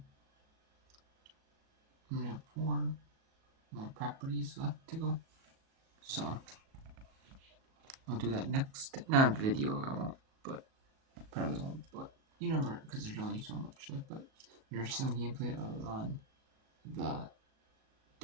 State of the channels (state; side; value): late; left; 37 ms